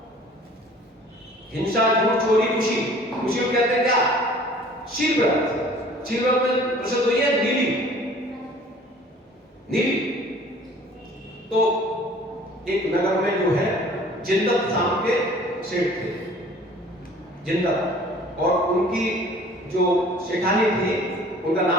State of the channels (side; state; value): both; normal; correlation 0.50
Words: हिंसा, झूठ, चोरी, खुशी को कहते हैं क्या? शील व्रत में प्रसिद्ध हुई है नीली। तो एक नगर में जो है जिंदत नाम के सेठ थे, जिंदत, और उनकी जो सेठानी थी उनका